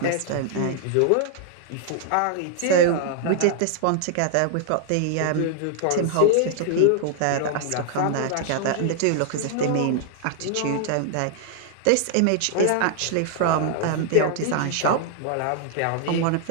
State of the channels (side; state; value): both; different; correlation 0.00